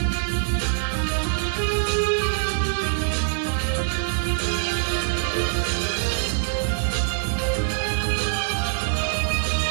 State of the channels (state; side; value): silent; left; 56 dB below the other